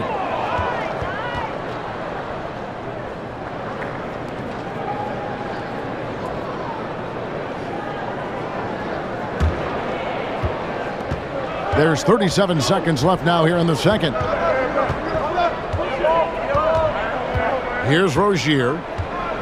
There's 37 seconds left now here in the second. Here's Rozier.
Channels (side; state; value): both; identical; correlation 1.00